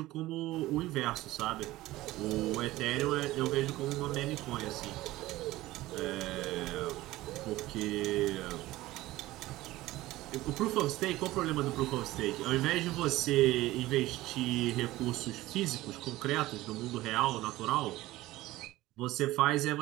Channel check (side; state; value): left; quieter; 17.4 dB